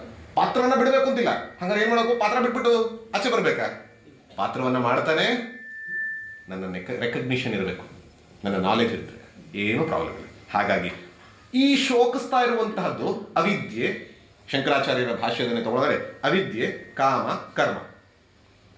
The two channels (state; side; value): identical; both; correlation 1.00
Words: ಪಾತ್ರವನ್ನ ಬಿಡಬೇಕು ಅಂತಿಲ್ಲ. ಹಂಗಾರೆ ಏನ್ ಮಾಡಬೇಕು? ಪಾತ್ರ ಬಿಟ್ಬಿಟ್ಟು ಆಚೆ ಬರ್ಬೇಕಾ? ಪಾತ್ರವನ್ನ ಮಾಡ್ತಾನೆ ನನ್ನ ರೆಕಗ್ನಿಷನ್ ಇರಬೇಕು, ನನ್ನ ನಾಲೆಜ್ ಇರ್ತದೆ, ಏನೂ ಪ್ರಾಬ್ಲಮ್ ಇಲ್ಲ. ಹಾಗಾಗಿ ಈ ಶೋಕಿಸ್ತಾ ಇರುವಂತಹದ್ದು ಅವಿದ್ಯೆ. ಶಂಕರಾಚಾರ್ಯರ ಭಾಷ್ಯದನ್ನೇ ತಗೊಳ್ಳೋದ್ರೆ ಅವಿದ್ಯೆ, ಕಾಮ, ಕರ್ಮ.